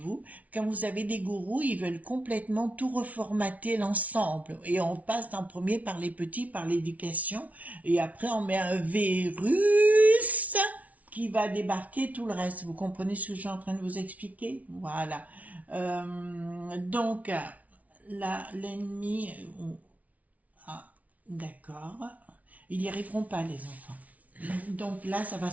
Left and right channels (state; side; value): late; left; 0.070 ms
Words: Quand vous avez des gourous, ils veulent complètement tout reformater l'ensemble. Et on passe en premier par les petits, par l'éducation. Et après, on met un virus qui va débarquer tout le reste. Vous comprenez ce que je suis en train de vous expliquer? Voilà. Donc, là, l'ennemi... Ah, d'accord. Ils n'y arriveront pas, les enfants. Donc là, ça va